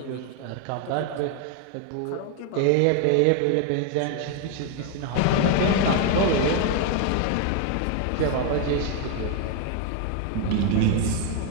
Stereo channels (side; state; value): both; different; correlation 0.01